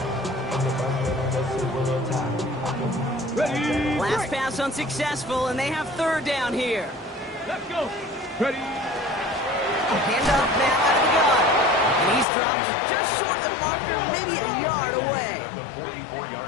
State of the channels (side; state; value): right; drops out; at 12.2 s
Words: Ready. Last pass unsuccessful, and they have 3rd down here. Let's go. Ready. Hand off now out of the gun. And he's dropped just short of the marker, maybe a yard away. The 44-yard